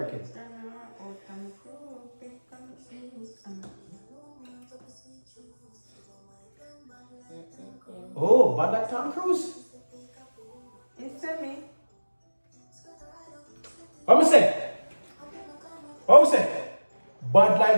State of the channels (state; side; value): inverted; both; correlation -1.00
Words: Oh, but like Tom Cruise. It's to me. What me say? What me say? Bad